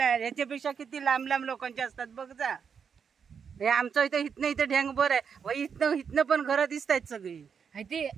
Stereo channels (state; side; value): quieter; left; 6.7 dB